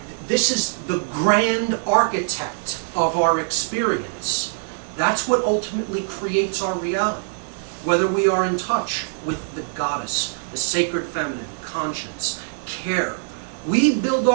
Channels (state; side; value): silent; left; 64 dB below the other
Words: This is the grand architect of our experience. That's what ultimately creates our reality. Whether we are in touch with the goddess, the sacred feminine, conscience, care. We build